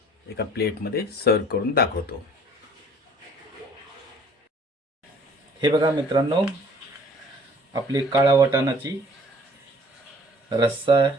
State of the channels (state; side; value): normal; both; correlation 0.54